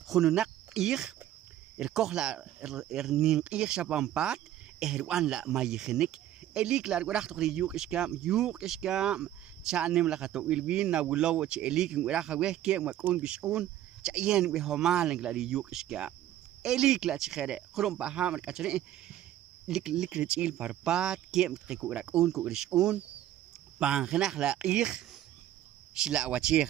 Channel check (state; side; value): quieter; left; 12.5 dB